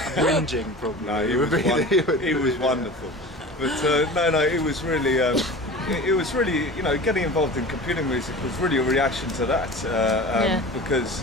Whinging, probably. No, he was wonderful. But it was really it was really, you know, getting involved in computer music was really a reaction to that,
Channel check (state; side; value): normal; both; correlation 0.35